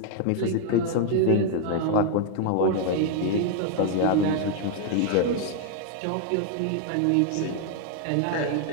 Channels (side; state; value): both; different; correlation 0.00